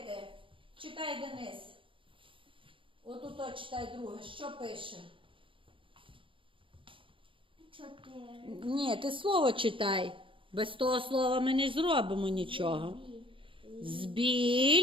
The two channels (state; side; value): late; left; 0.25 ms